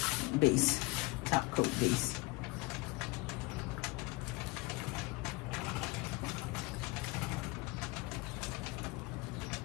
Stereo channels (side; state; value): right; quieter; 23.4 dB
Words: base, top coat base.